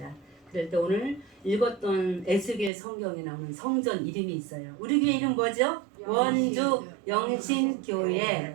그럴 때 오늘 읽었던 에스겔 성경에 나오는 성전 이름이 있어요. 우리 교회 이름 뭐죠? 원주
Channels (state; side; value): drops out; left; at 2.7 s